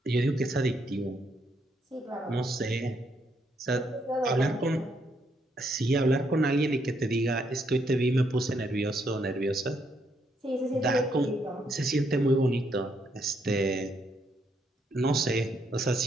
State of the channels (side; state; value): both; normal; correlation 0.74